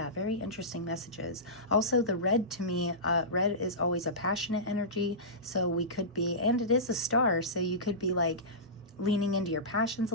very interesting messages. Also the red, to me, red is always a passionate energy, so we could be, and it is a star, so you could be like leaning into your passions a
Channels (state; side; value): normal; both; correlation -0.19